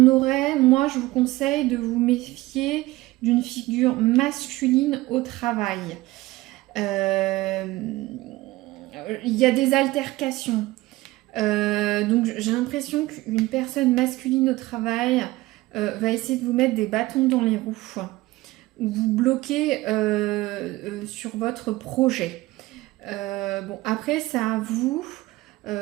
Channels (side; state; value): left; quieter; 19.0 dB